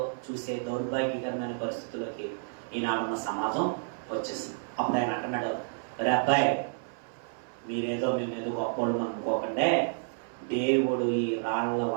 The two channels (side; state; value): left; silent; 58 dB below the other